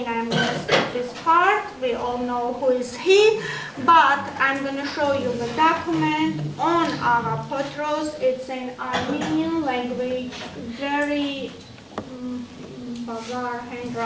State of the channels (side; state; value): both; identical; correlation 1.00